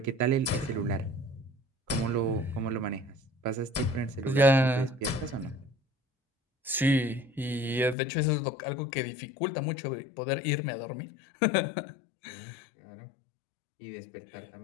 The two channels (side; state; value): right; drops out; at 8.0 s